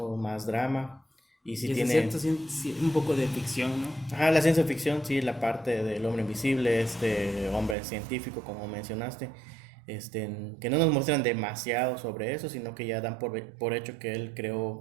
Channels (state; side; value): drops out; left; at 7.8 s